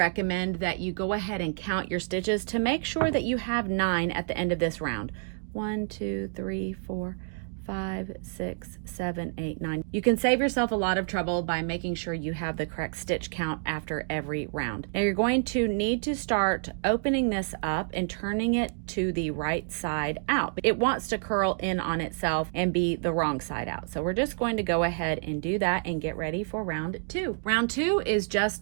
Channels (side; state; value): left; silent; 59 dB below the other